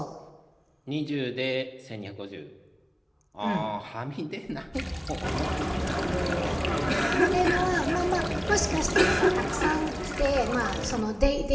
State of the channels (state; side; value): identical; both; correlation 1.00